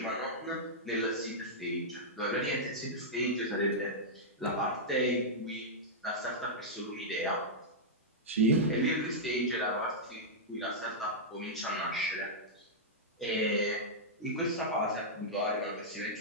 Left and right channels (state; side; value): normal; both; correlation -0.09